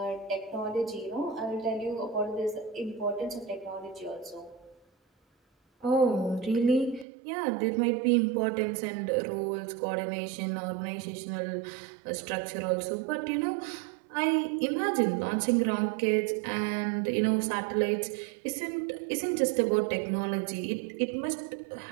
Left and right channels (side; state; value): left; drops out; at 7.1 s